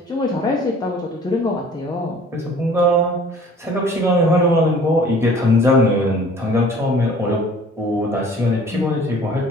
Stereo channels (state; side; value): normal; both; correlation 0.50